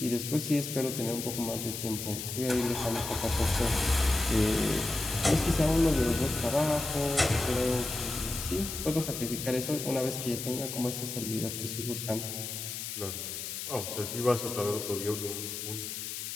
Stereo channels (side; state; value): left; noise; hiss, 6 dB below the sound